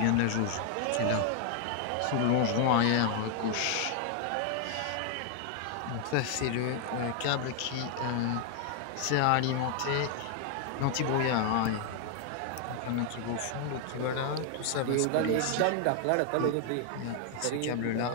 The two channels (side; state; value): both; different; correlation 0.00